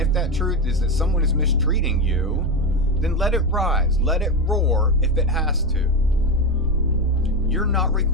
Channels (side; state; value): both; normal; correlation 0.15